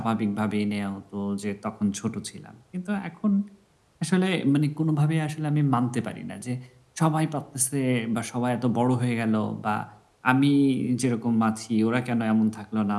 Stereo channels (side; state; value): both; identical; correlation 1.00